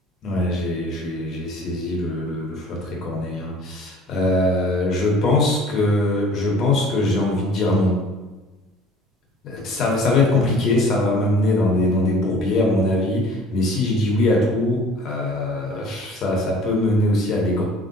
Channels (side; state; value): both; normal; correlation 0.49